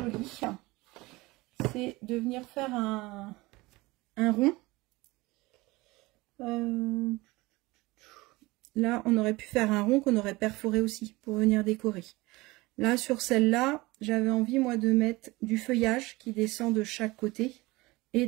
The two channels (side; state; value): left; quieter; 21.6 dB